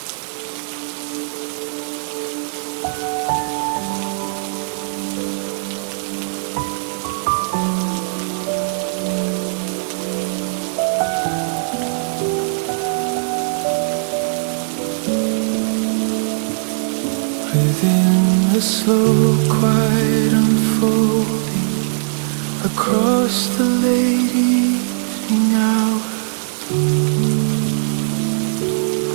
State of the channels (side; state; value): left; silent; digital silence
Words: Within the slow, quiet unfolding across the late evening hour,